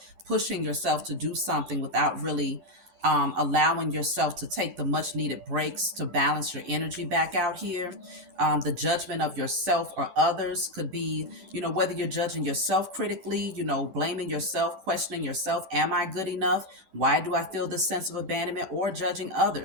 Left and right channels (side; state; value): left; late; 10 ms